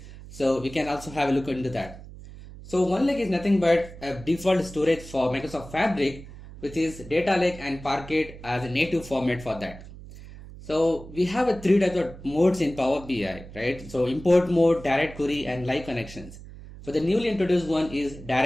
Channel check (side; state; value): right; noise; hum, 16 dB below the sound